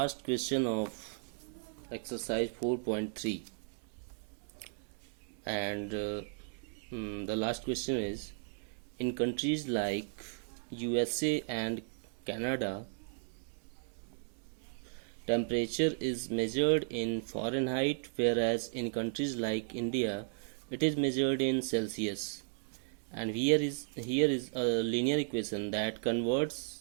question of exercise 4.3, and the last question is: in countries like USA and Canada, temperature is measured in Fahrenheit, whereas in countries like India, it is measured in Celsius. And here is a linear equation that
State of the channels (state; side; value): silent; left; digital silence